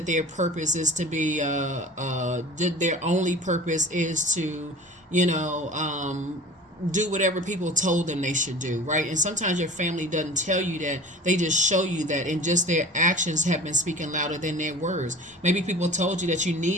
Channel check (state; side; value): normal; both; correlation 0.40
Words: their purpose is to be, their only purpose is to, do whatever people told them they should do, right? And sometimes your family doesn't tell you that, they just show you that, and just their actions have been speaking louder than their words. Maybe people told you that you